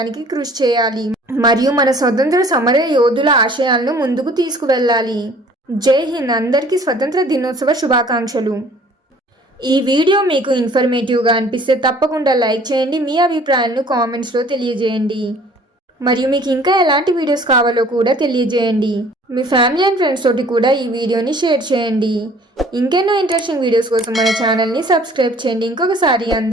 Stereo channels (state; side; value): normal; both; correlation 0.53